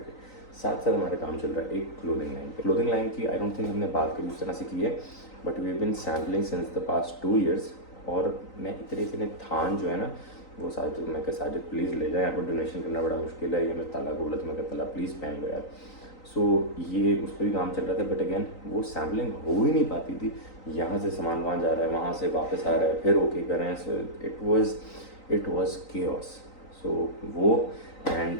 साथ साथ हमारा काम चल रहा है एक क्लोथिंग लाइन पे। क्लोथिंग लाइन की आई डोंट थिंक हमने बात कभी उस तरह से की है, but we have been sampling since the past 2 years. और मैं इतने थान जो है ना, वो साजिद, मैं कहा साजिद प्लीज़ ले जाए, यहाँ पर डोनेशन करना बड़ा मुश्किल है, ये मैं ताला बोला तो मैं कहा ताला प्लीज़ पहन लो यार। सो ये उस पर भी काम चल रहा था, बट अगेन वो सैम्पलिंग हो ही नहीं पाती थी। यहाँ से सामान वहाँ जा रहा है, वहाँ से वापस आ रहा है, फिर ओके कर रहे हैं। So it was chaos. So वो and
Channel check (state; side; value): late; right; 3.9 ms